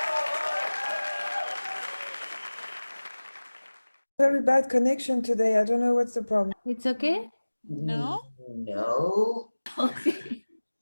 Very bad connection today. I don't know what's the problem. It's okay? No.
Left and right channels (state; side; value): inverted; both; correlation -1.00